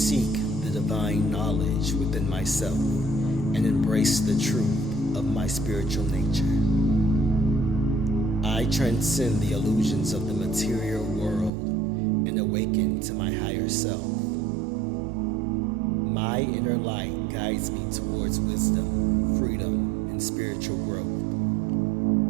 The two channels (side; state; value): left; drops out; at 11.5 s